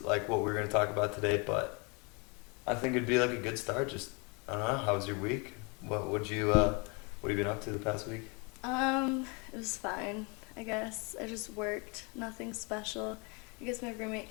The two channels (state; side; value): quieter; right; 31.5 dB